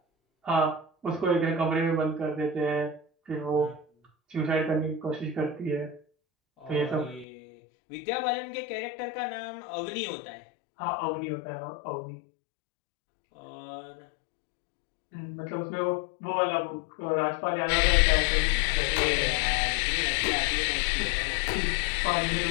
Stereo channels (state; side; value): drops out; right; at 7.2 s